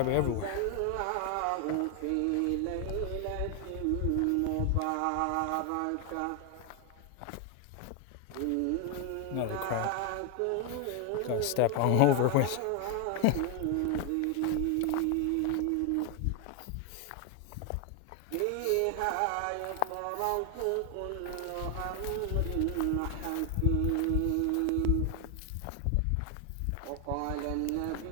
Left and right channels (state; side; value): different; both; correlation 0.01